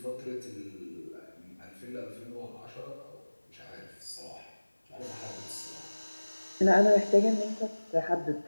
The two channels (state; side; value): inverted; both; correlation -1.00